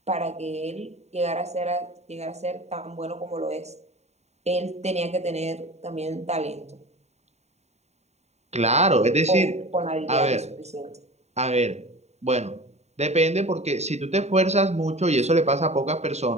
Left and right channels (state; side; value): late; left; 0.32 ms